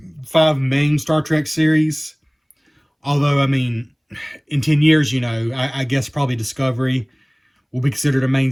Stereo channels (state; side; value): identical; both; correlation 1.00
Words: 5 main Star Trek series, although, I mean, in 10 years, you know, I guess probably Discovery will be considered a main